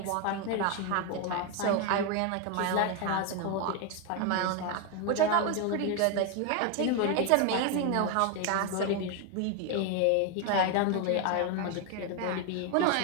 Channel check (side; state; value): both; different; correlation 0.01